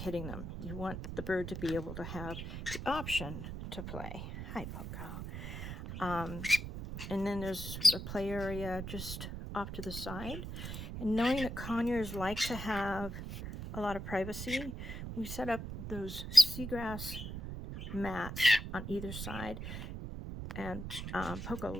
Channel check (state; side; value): noise; right; rumble, 7 dB below the sound